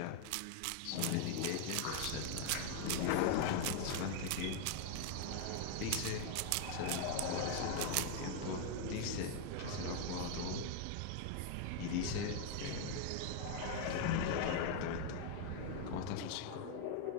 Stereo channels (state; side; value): different; both; correlation 0.00